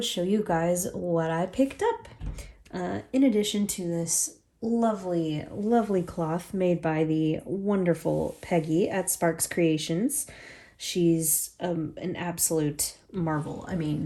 show you guys what I picked up. In addition to this lovely cloth made by the wonderful Peggy at Sparks Creations. She's an absolute marvel. I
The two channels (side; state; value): both; identical; correlation 1.00